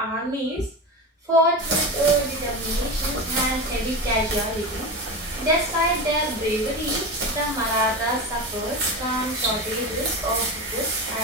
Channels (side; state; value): both; normal; correlation 0.24